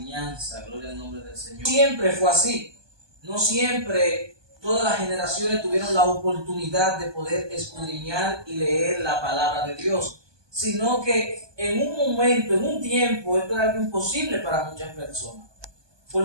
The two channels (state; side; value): late; left; 1.2 ms